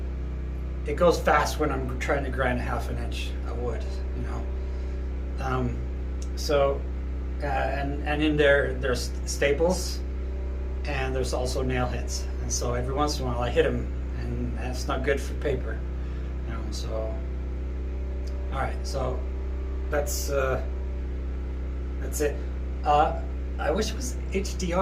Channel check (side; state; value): both; identical; correlation 1.00